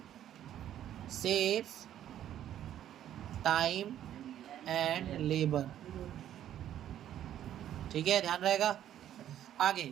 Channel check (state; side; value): quieter; left; 11.2 dB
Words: saves time and labour. ठीक है, ध्यान रहेगा। आगे